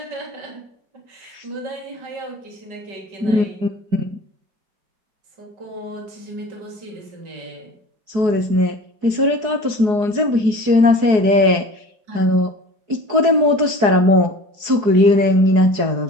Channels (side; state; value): left; late; 4.7 ms